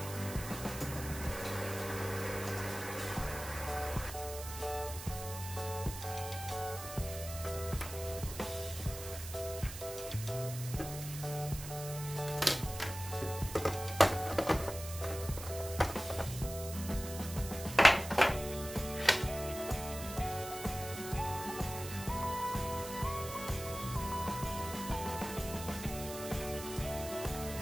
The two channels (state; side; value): noise; right; hiss, 10 dB below the sound